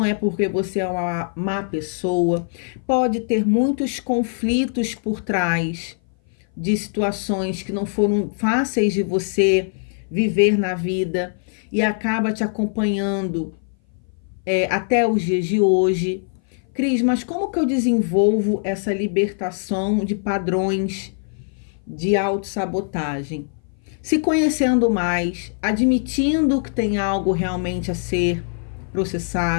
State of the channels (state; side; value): silent; right; 58 dB below the other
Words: é porque você é uma má pessoa, pode ter muitos conflitos por trás de situações que não foram fáceis de você viver na vida e acaba te acompanhando até os dias de hoje. Cris, mas como que eu desenvolvo essa libertação de padrões de autossabotagem? Se conhecendo mais, admitindo que tem algo realmente a ser